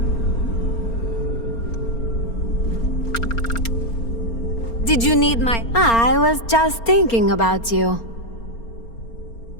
Did you need my... I was just thinking about you.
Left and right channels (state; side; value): late; right; 4.3 ms